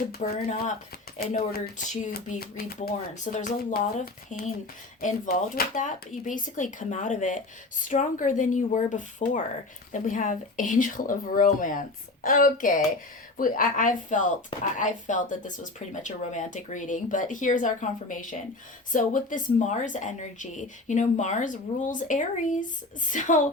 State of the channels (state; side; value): quieter; right; 3.0 dB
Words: burn up in order to be reborn. So there's a lot of pain involved with that, but you basically come out of it stronger than you were before. Then we have Angel of Romance. Okay, I felt that this was pretty much a romantic reading, but here's our confirmation. So with this Mars energy, Mars rules Aries. So